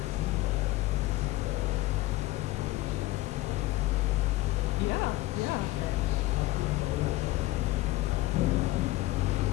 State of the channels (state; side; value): quieter; right; 17.8 dB